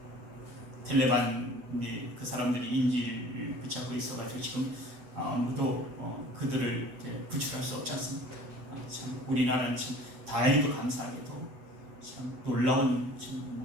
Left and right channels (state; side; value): late; left; 8.1 ms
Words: 텔레반이 그 사람들이 인지를 붙잡고 있어가지고 지금 아무도 그들을 구출할 수 없지 않습니까? 참 우리나라는 참 다행히도 감사하게도 참 놀라운